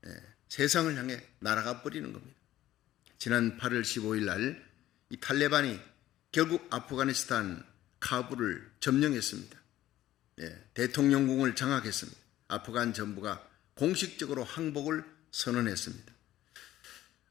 세상을 향해 날아가 버리는 겁니다. 지난 8월 15일 날 이 탈레반이 결국 아프가니스탄 카불을 점령했습니다. 대통령궁을 장악했습니다. 아프간 정부가 공식적으로 항복을 선언했습니다.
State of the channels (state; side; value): quieter; right; 13.9 dB